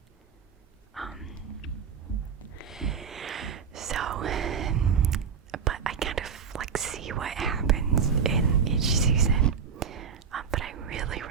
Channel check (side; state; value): left; quieter; 6.5 dB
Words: But I kind of like see what happens in each season. But I really